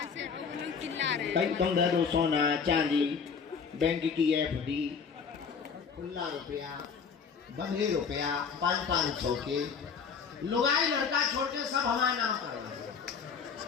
भाई तुम दे दो सोना चांदी, बैंक की FD, खुला रुपया, बंधे रुपया 500 के, लुगाई लड़का छोड़ के सब हमारा नाम करेंगे।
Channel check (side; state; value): right; quieter; 6.1 dB